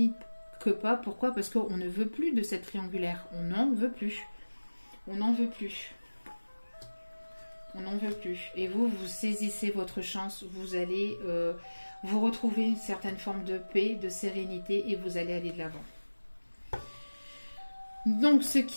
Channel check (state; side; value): inverted; both; correlation -1.00